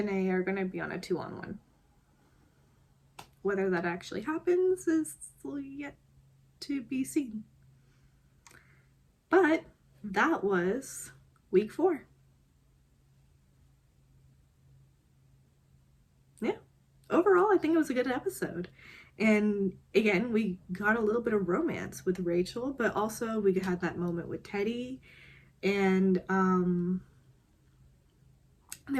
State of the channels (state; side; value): identical; both; correlation 1.00